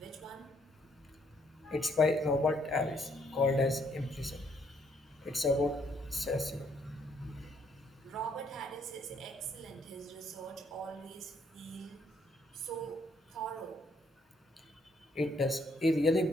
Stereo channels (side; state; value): both; normal; correlation 0.69